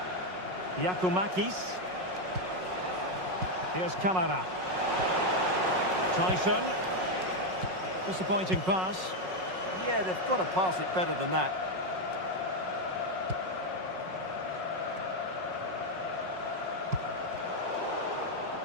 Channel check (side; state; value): left; late; 5.4 ms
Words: Giacomakis. Here's Kamara. Tyson. Disappointing pass. Yeah, they've got to pass it better than that.